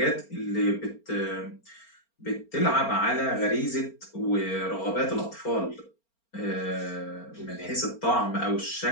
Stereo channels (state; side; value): late; right; 4.4 ms